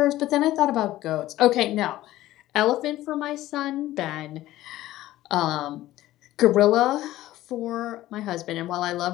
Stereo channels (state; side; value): quieter; right; 15.3 dB